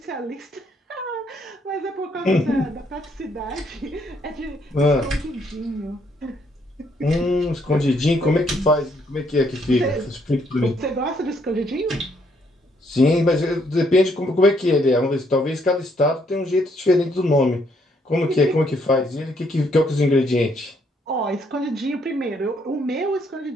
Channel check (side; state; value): both; normal; correlation 0.70